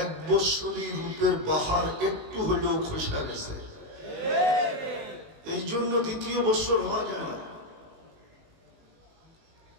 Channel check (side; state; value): left; late; 19 ms